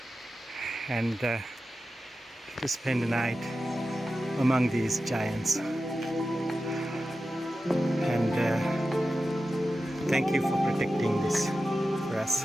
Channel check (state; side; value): normal; both; correlation 0.93